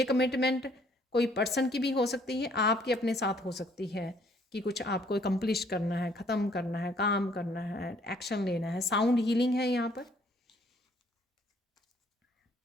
कमिटमेंट कोई पर्सन की भी हो सकती है, आपके अपने साथ हो सकती है कि कुछ आपको एकम्प्लिश करना है, ख़त्म करना है, काम करना है, एक्शन लेना है। साउंड हीलिंग है यहाँ पर।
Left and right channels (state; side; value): normal; both; correlation 0.63